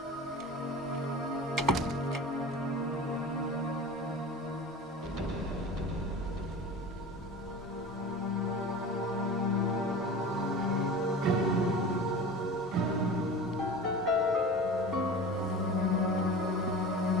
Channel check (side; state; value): both; normal; correlation 0.34